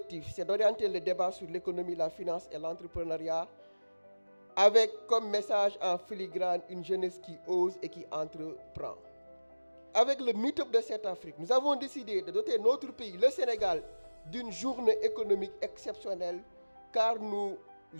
c'est d'orienter le débat sur l'économie, la finance et l'entrepreneuriat avec comme message en filigrane une jeunesse qui ose et qui entreprend. Avec le Meet-up de cette Afrique, nous avons décidé de doter notre pays, le Sénégal, d'une journée économique exceptionnelle car nous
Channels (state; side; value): inverted; both; correlation -1.00